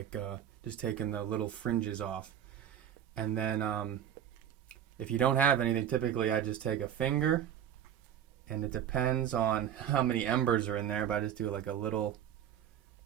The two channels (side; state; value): left; quieter; 10.0 dB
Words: just taking the little fringes off. And then if you don't have anything, typically I just take a finger, and it depends on how many embers are in there, but I just do like a little